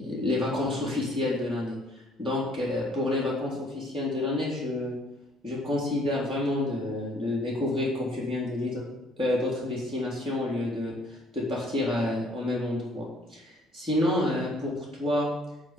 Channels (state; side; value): normal; both; correlation 0.61